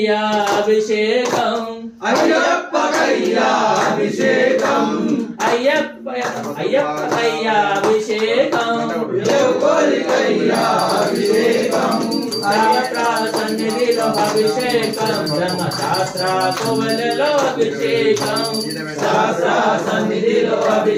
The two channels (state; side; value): identical; both; correlation 1.00